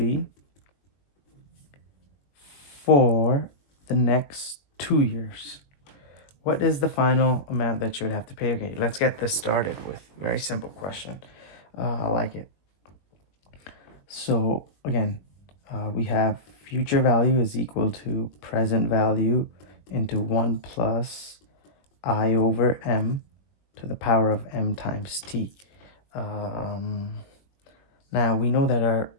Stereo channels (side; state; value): right; late; 21 ms